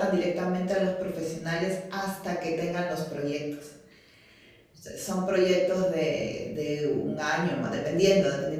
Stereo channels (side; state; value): both; identical; correlation 1.00